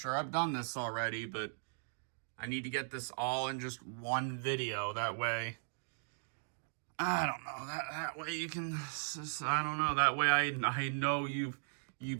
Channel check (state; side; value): silent; left; digital silence